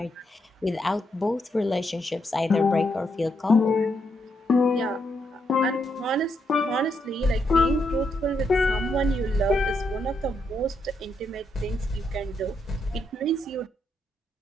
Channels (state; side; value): normal; both; correlation 0.79